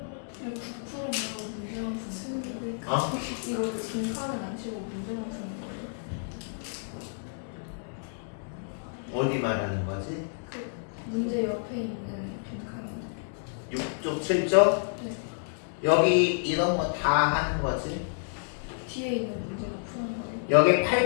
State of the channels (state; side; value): silent; right; digital silence